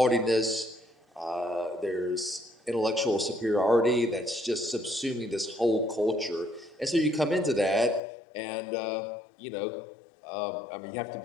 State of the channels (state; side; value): drops out; right; at 8.0 s